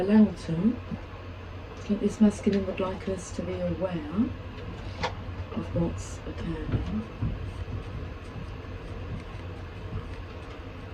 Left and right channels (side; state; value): both; identical; correlation 1.00